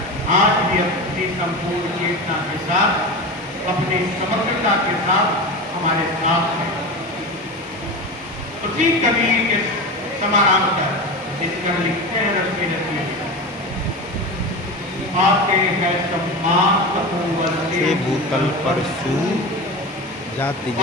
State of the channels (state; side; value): normal; both; correlation 0.26